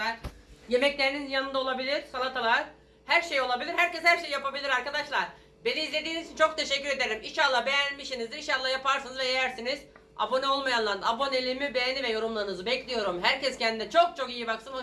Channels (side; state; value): both; identical; correlation 1.00